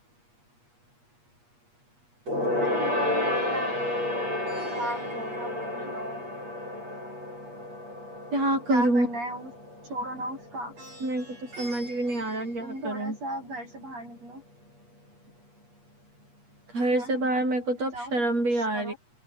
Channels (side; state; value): left; late; 8.4 ms